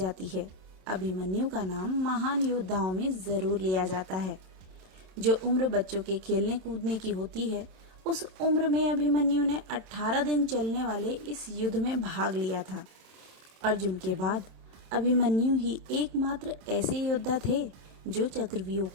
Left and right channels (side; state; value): left; late; 27 ms